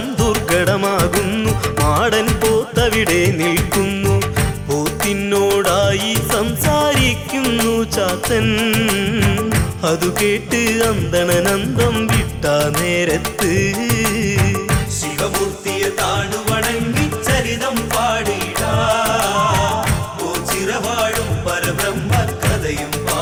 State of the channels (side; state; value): both; identical; correlation 1.00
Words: ദുർഘടമാകുന്നു, മാടൻ പോത്തവിടെ നിൽക്കുന്നു. പോത്തിനോടായി സംസാരിക്കുന്നു ചാത്തൻ, അതു കേട്ട് അന്തണനന്തം വിട്ട നേരത്ത്. ശിവമൂർത്തിയെ താണു വണങ്ങി ചരിതം പാടിടാ, ഓ ചിറവാഴും പരബ്രഹ്മ കഥയും